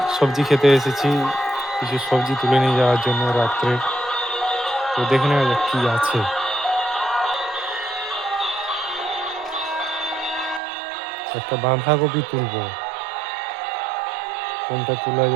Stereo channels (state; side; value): drops out; left; at 10.6 s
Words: সবজি খেতে এসেছি, কিছু সবজি তুলে নিয়ে যাওয়ার জন্য রাত্রে। তো দেখে নেওয়া যাক কি আছে। একটা বাঁধাকপি তুলবো, কোনটা তোলা